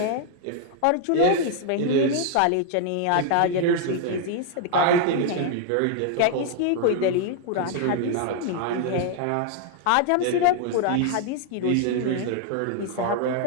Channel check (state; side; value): different; both; correlation 0.00